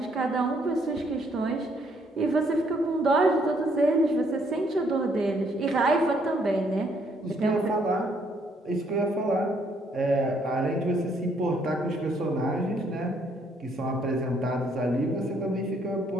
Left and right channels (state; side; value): normal; both; correlation 0.68